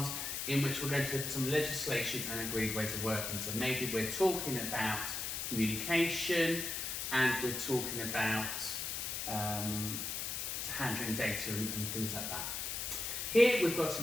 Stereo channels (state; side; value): noise; left; hiss, 3 dB below the sound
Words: in which we're going to look at some legislation and agreed ways of working. So maybe we're talking about communication and we're talking about to handling data and things like that. Here we've got